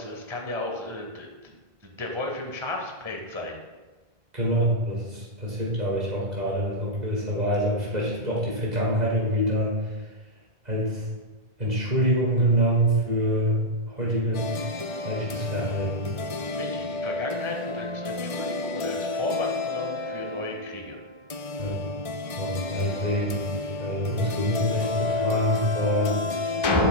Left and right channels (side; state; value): left; late; 1.6 ms